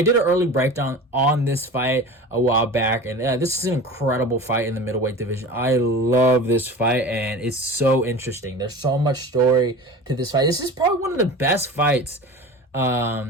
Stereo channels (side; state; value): both; normal; correlation 0.35